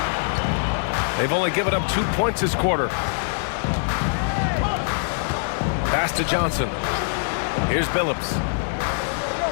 They've only given up 2 points this quarter. Pass to Johnson. Here's Billups.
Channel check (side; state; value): right; silent; digital silence